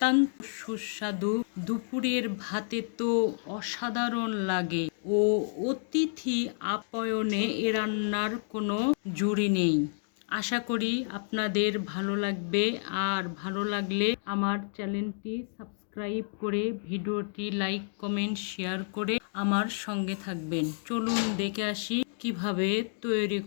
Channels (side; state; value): right; silent; digital silence